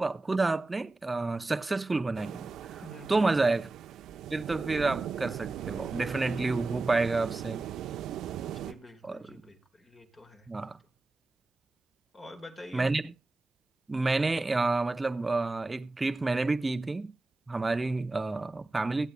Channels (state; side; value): quieter; left; 3.1 dB